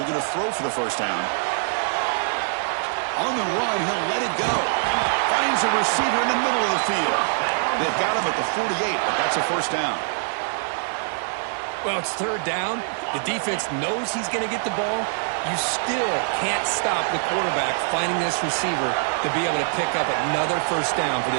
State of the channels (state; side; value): silent; left; 56 dB below the other